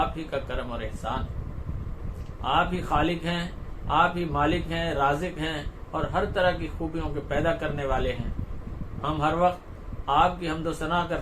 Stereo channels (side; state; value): both; identical; correlation 1.00